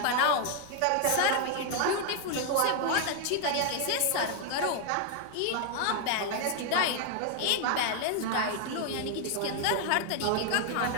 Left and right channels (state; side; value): different; both; correlation 0.00